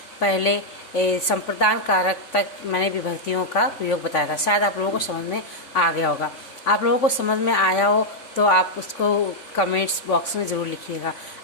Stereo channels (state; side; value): late; right; 3.5 ms